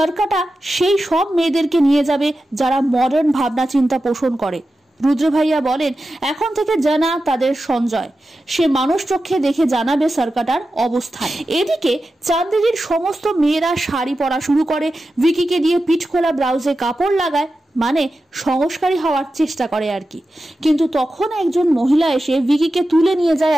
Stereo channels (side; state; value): both; normal; correlation 0.92